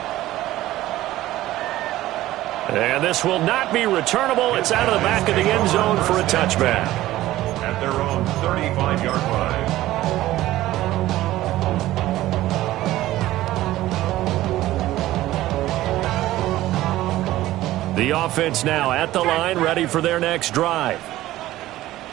And this will not be returnable. It's out of the back of the end zone for a touchback. At their own 35-yard line. The offense now at the line, ready for their next drive.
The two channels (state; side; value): quieter; left; 15.6 dB